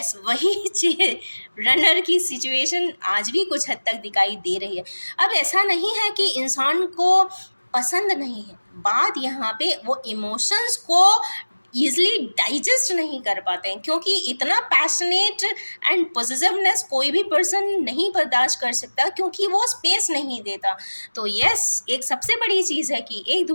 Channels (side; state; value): both; inverted; correlation -1.00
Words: वही रनर की सिचुएशन आज भी कुछ हद तक दिखाई दे रही है। अब ऐसा नहीं है कि इंसान को पसंद नहीं है, बात यहाँ पे वो इमोशंस को ईजिली डाइजेस्ट नहीं कर पाते हैं, क्योंकि इतना पैशनेट एंड पॉजिटिवनेस कोई भी पर्सन नहीं बर्दाश्त कर सकता, क्योंकि वो स्पेस नहीं देता। तो यस, एक सबसे बड़ी चीज़ है कि एक